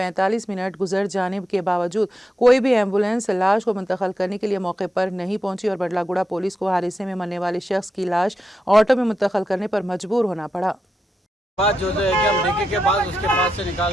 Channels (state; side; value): normal; both; correlation 0.87